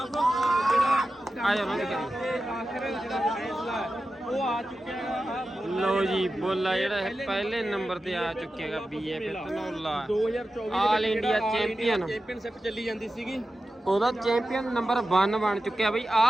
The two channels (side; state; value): both; normal; correlation 0.93